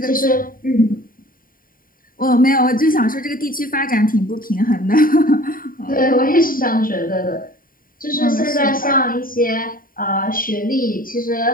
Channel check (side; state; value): right; late; 0.41 ms